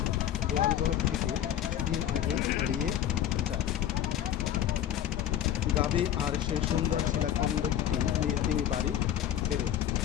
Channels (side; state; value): right; quieter; 11.2 dB